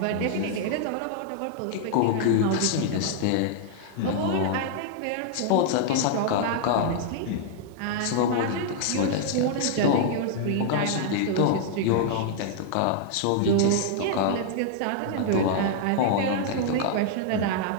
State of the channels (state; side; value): different; both; correlation -0.01